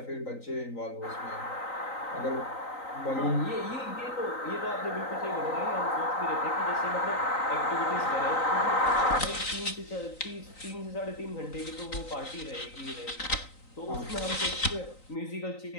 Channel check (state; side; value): late; right; 3.9 ms